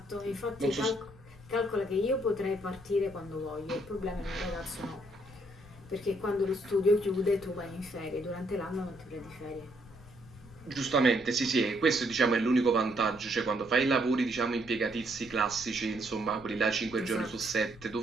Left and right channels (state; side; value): noise; left; rumble, 21 dB below the sound